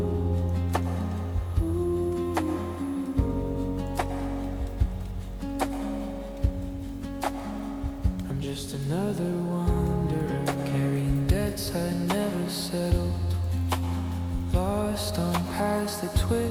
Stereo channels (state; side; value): identical; both; correlation 1.00